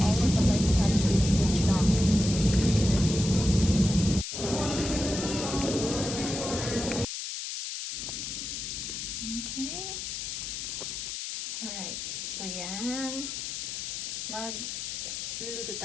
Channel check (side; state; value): left; noise; hiss, 5 dB below the sound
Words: Okay. Alright. So, yan. Magluluto